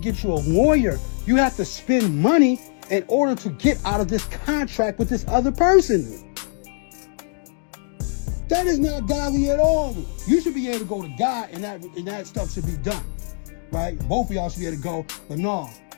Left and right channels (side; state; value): right; silent; digital silence